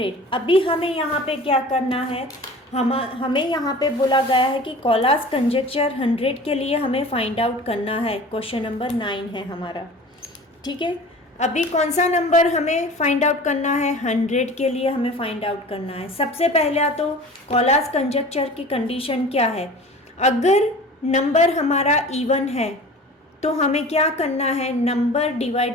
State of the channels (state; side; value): normal; both; correlation 0.40